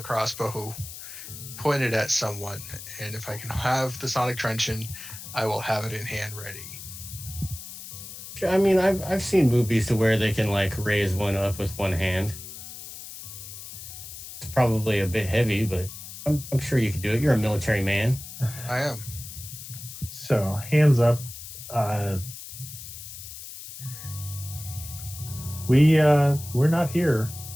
crossbow pointed at someone, and if I can have the sonic truncheon, I will have it in hand ready. I mean, I've seen movies to where they can like raise one up with one hand. It's probably a bit heavy, but I'm sure you can do it. You're a military man. I am. So, hands up. We're not here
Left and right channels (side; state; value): left; noise; hiss, 12 dB below the sound